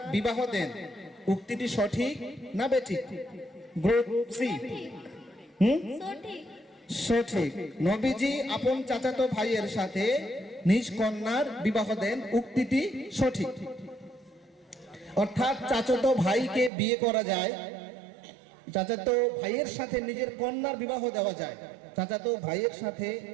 বিবাহ দেন, উক্তিটি সঠিক না বেঠিক? Group C. সঠিক। নবীজি আপন চাচাতো ভাইয়ের সাথে নিজ কন্যার বিবাহ দেন, উক্তিটি সঠিক। অর্থাৎ চাচাতো ভাইকে বিয়ে করা যায়, চাচাতো ভাইয়ের সাথে নিজের কন্যার বিবাহ দেওয়া যায়, চাচাতো ভাইয়ের সাথে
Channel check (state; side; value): drops out; left; at 16.7 s